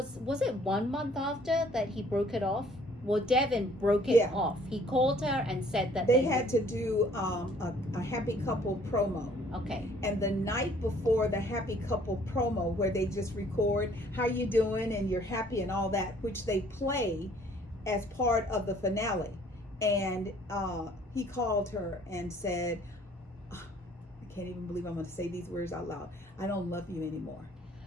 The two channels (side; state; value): both; normal; correlation 0.58